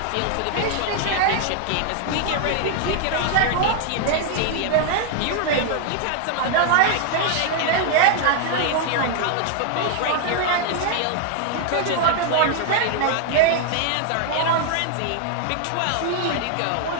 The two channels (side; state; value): both; different; correlation 0.00